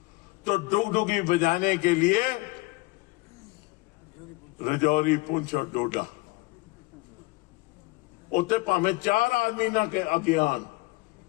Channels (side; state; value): right; quieter; 23.3 dB